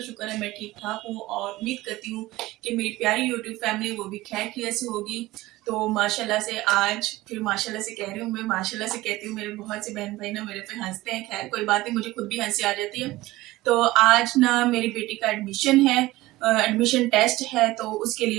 शुक्र है मैं ठीक ठाक हूँ और उम्मीद करती हूँ कि मेरी प्यारी यूट्यूब फैमिली वो भी खैर खैरियत से होगी। तो माशाल्लाह से आज फिर माशाल्लाह से कह रही हूँ, मैं माशाल्लाह से कहती हूँ, मेरे बहुत से बहन भाई ना मेरे पे हंसते हैं। खैर कोई बात नहीं, मुझे खुद भी हंसी आ जाती है। तो आज ना मेरी बेटी का एडमिशन है, एडमिशन टेस्ट है, तो उसके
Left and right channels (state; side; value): quieter; left; 18.3 dB